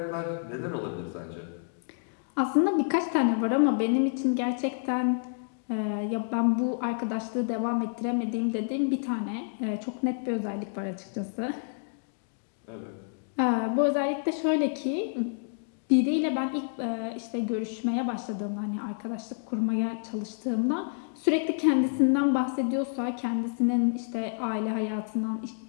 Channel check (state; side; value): silent; right; digital silence